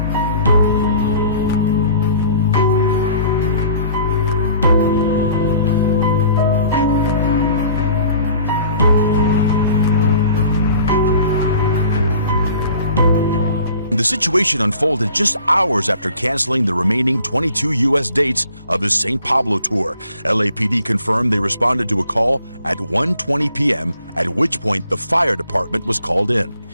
The situation unfolded just hours after canceling the remaining 22 U.S. dates of his St. Pablo tour. LAPD confirmed they responded to a call at 1:20 p.m., at which point the fire department was called in.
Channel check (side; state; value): both; inverted; correlation -0.52